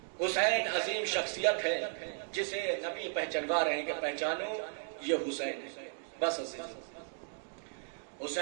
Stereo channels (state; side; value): silent; left; digital silence